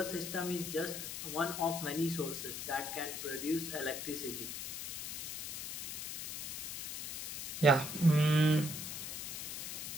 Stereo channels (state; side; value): noise; left; hiss, 6 dB below the sound